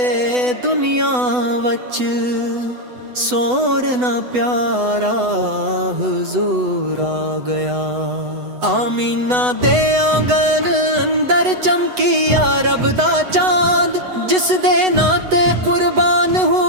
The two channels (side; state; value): left; late; 8.0 ms